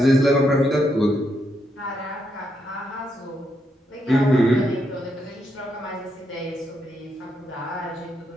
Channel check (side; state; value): both; normal; correlation 0.79